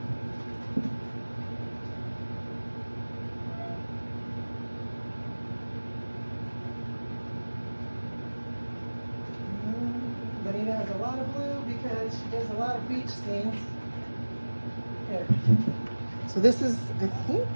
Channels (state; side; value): inverted; both; correlation -1.00